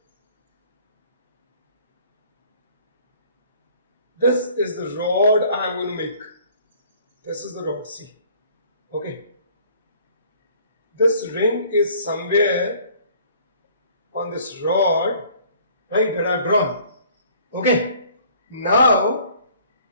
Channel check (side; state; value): both; inverted; correlation -0.55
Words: the rod I am going to make. This is the rod, see. Okay. This ring is somewhere on this rod, right, that I have drawn. Okay. Now,